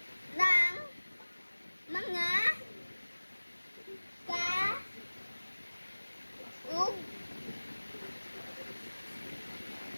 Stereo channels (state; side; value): inverted; both; correlation -1.00